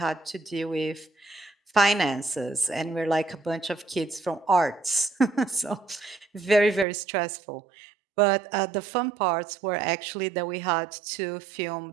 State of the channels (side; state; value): left; drops out; at 6.9 s